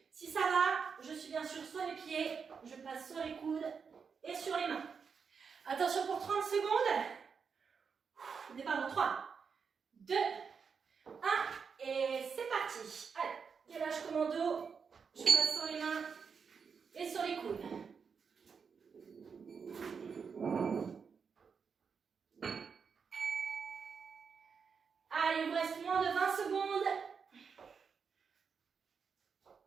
Si ça va, je suis bien sûr sur les pieds. Je passe sur les coudes et sur les mains. Attention pour 30 secondes. Départ dans 3, 2, 1 et c'est parti. Allez, gainage commando. Je passe sur les mains et sur les coudes. Allez, il vous reste moins de 20 secondes.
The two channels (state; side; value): quieter; left; 6.0 dB